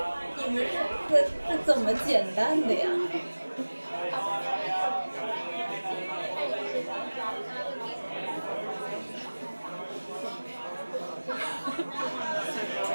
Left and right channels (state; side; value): inverted; both; correlation -1.00